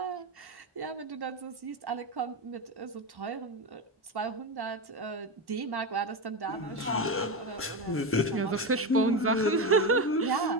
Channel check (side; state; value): both; normal; correlation 0.16